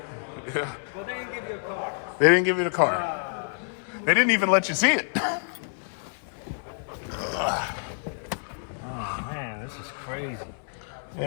Yeah. Well, they didn't give you a car. They didn't give you the car. They didn't even let you see it. Oh man, this is crazy.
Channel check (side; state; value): right; silent; 57 dB below the other